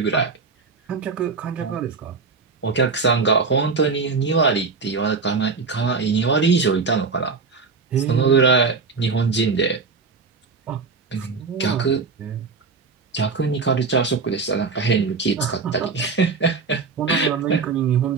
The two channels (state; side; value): quieter; left; 4.7 dB